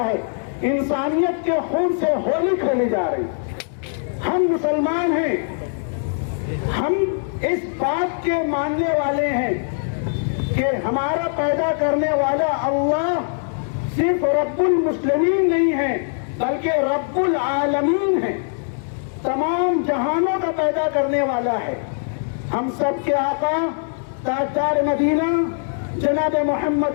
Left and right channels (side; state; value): right; silent; digital silence